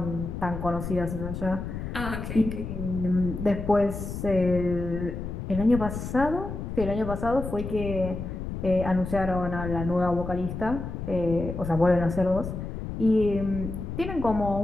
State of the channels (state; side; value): noise; left; rumble, 6 dB below the sound